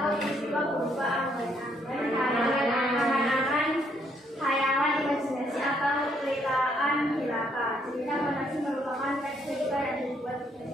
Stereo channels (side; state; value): both; normal; correlation 0.70